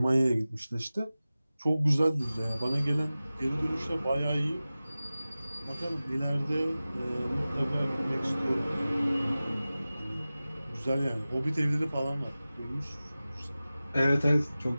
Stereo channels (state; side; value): inverted; both; correlation -0.97